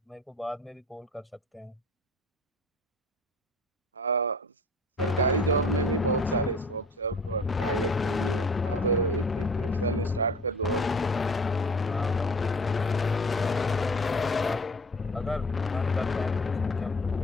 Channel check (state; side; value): normal; both; correlation 0.43